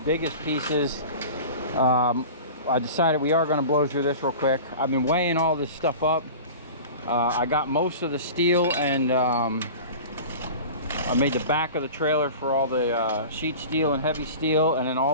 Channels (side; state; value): both; inverted; correlation -0.36